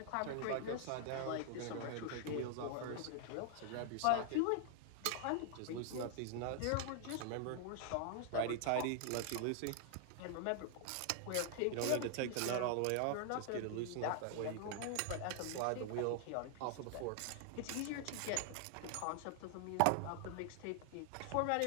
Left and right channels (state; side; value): different; both; correlation 0.00